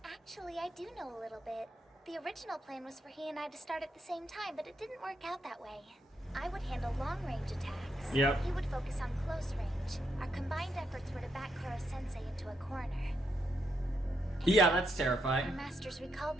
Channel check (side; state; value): both; normal; correlation 0.80